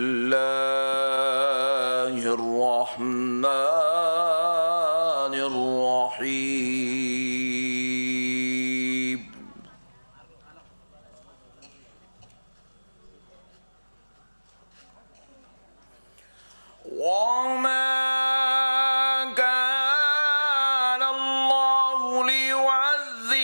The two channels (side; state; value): both; inverted; correlation -1.00